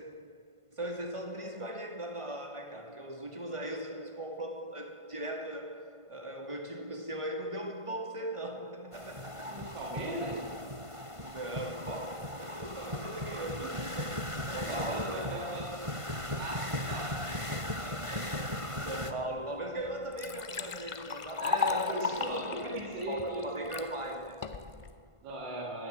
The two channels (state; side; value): late; left; 1.5 ms